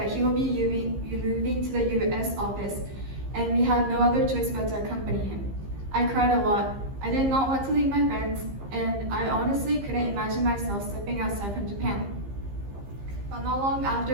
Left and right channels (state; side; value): late; left; 15 ms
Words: he will be moving to the US office, and we had no other choice but to accompany him. I cried a lot. I did not want to leave my friends, and I honestly couldn't imagine myself stepping outside from Japan. But not long